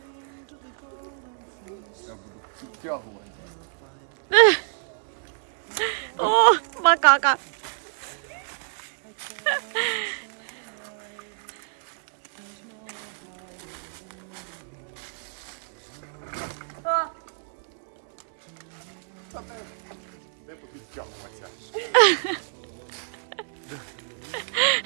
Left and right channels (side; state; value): left; silent; digital silence